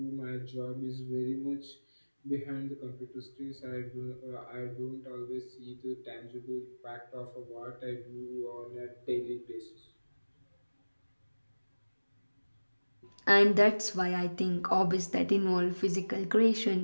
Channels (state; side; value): inverted; both; correlation -1.00